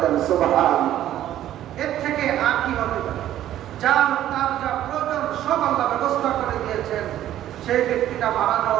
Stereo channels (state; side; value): quieter; left; 12.4 dB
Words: দেন। সুবহানাল্লাহ। এর থেকে আর কি হবে? তার যা প্রয়োজন সব আল্লাহ ব্যবস্থা করে দিয়েছেন। সেই ব্যক্তিটা মারা